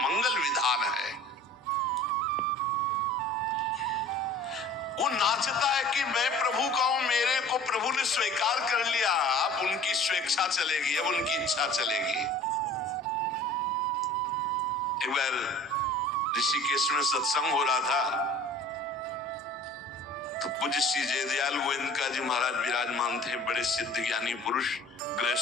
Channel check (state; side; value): normal; both; correlation 0.46